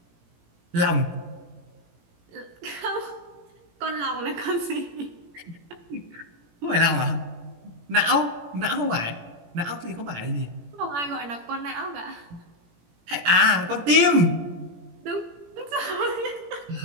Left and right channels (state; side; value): late; left; 17 ms